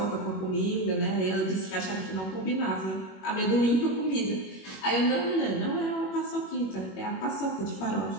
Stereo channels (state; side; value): late; right; 21 ms